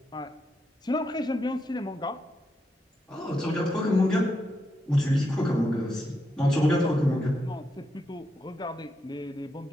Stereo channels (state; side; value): normal; both; correlation 0.83